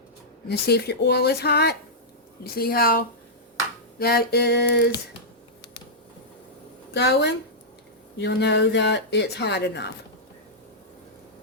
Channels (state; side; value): normal; both; correlation -0.11